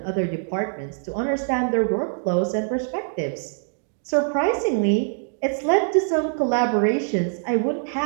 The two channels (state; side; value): silent; left; digital silence